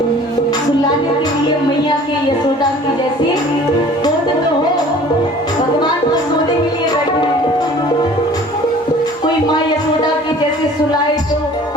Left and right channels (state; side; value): normal; both; correlation 0.48